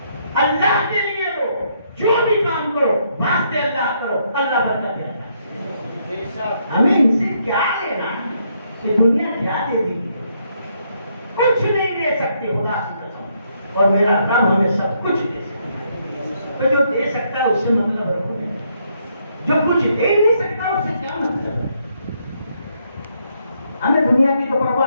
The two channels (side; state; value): both; inverted; correlation -0.74